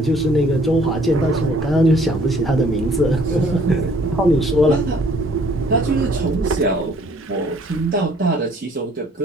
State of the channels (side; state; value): both; normal; correlation 0.59